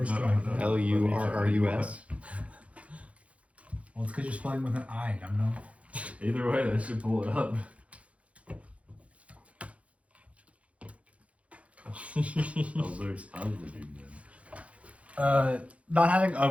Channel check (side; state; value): left; late; 0.064 ms